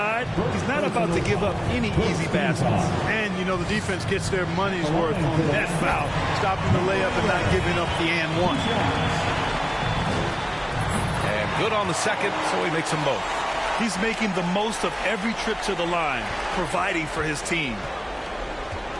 He's not about to give up any easy baskets. And, you know, the defense gets their money's worth on that foul. Stopping the layup and not giving up the and one. Good on the second, so he makes them both. He's making the most of every trip to the line, providing for his team.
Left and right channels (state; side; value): identical; both; correlation 1.00